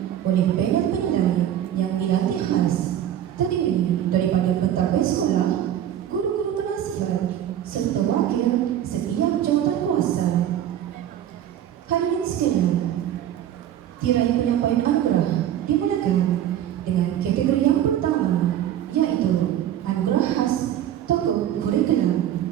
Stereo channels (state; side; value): quieter; left; 11.1 dB